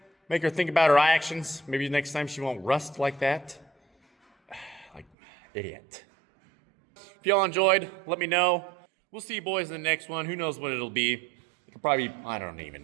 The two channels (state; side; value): drops out; left; at 5.1 s